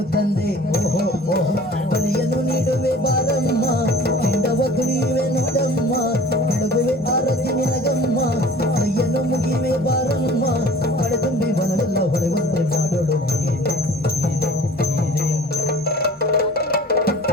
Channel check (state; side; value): normal; both; correlation 0.46